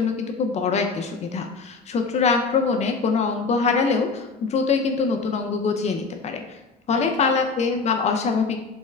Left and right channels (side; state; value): right; quieter; 4.5 dB